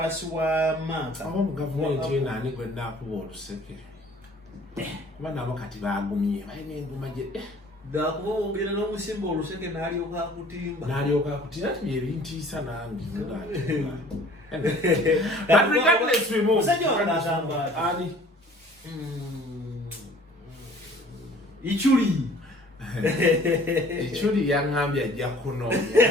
wa maaka aba mu gavumenti eno ani gwe naakuba oluseke kuba nabo kati baagumye balina enguma gye dakuba ogenda n'omusimba oluseke n'alyoka akutimba ati byebintiisa nange musajja wange agamba ani Ichuli yaŋŋambye ajja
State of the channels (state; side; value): normal; both; correlation 0.51